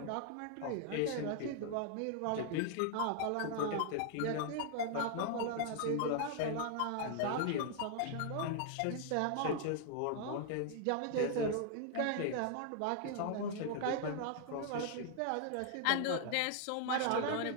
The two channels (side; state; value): both; different; correlation 0.00